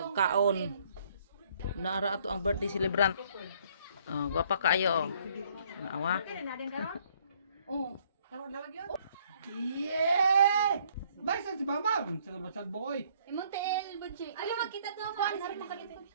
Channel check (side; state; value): both; inverted; correlation -0.63